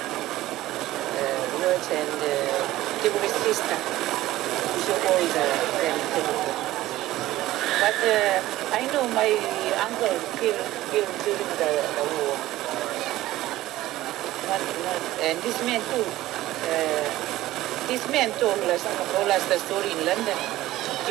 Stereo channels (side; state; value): left; quieter; 15.9 dB